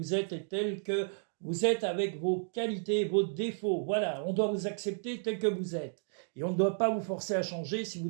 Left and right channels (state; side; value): silent; left; digital silence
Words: êtes et tels que vous êtes avec vos qualités, vos défauts. Voilà, on doit vous accepter tel que vous êtes. Et on ne doit pas vous forcer à changer. Si vous